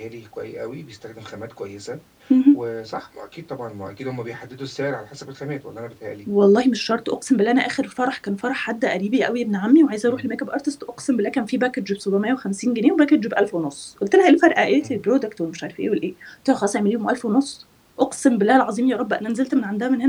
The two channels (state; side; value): identical; both; correlation 1.00